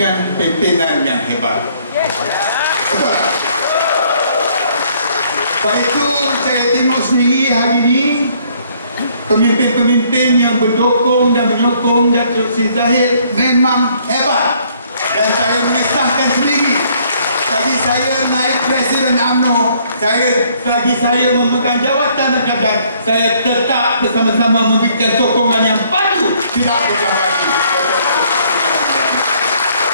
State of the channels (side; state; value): both; inverted; correlation -0.64